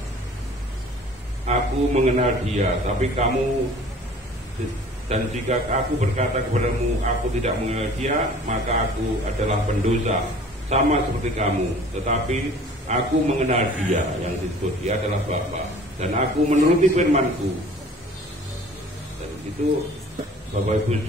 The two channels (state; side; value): normal; both; correlation 0.48